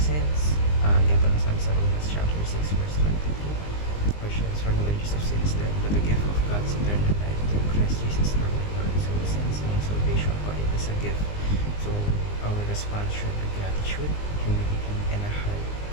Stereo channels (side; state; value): right; late; 20 ms